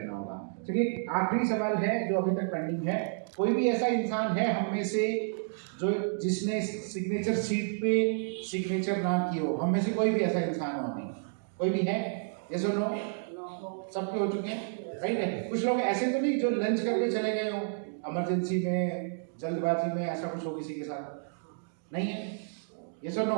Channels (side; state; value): left; silent; digital silence